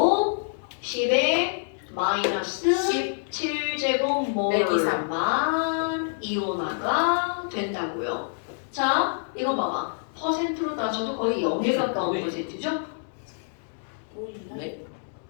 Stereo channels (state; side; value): silent; right; digital silence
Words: 10의 마이너스 17제곱몰만 이온화가 된다고요. 자 이거 봐봐. 퍼센트로 따져도 거의 0에 가까운 퍼센트죠? 네.